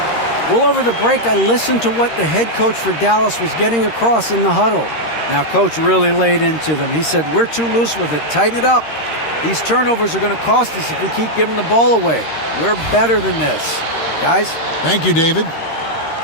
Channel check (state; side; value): late; right; 13 ms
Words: Well, over the break, I listened to what the head coach for Dallas was getting across in the huddle. Now, coach really laid into them. He said, we're too loose with it. Tighten it up. These turnovers are going to cost us if we keep giving the ball away. We're better than this. Guys? Thank you, David.